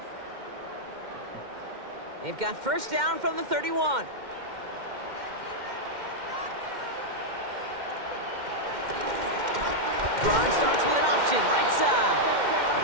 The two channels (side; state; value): left; late; 2.1 ms